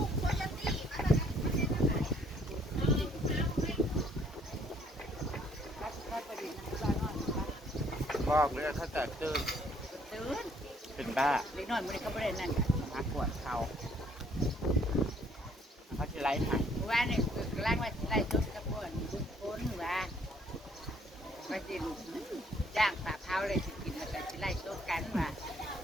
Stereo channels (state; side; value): normal; both; correlation 0.64